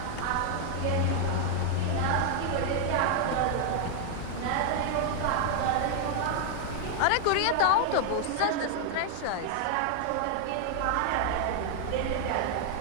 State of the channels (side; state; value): both; different; correlation 0.00